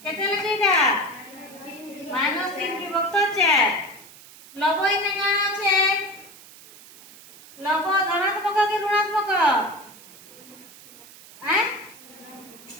केते लखेटा -3 विभक्त 4 लव इने काना छे लव धनात्मक कि ऋणात्मक हैं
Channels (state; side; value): noise; right; hiss, 20 dB below the sound